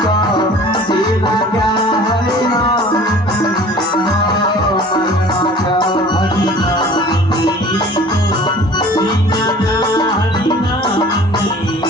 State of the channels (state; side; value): normal; both; correlation 0.46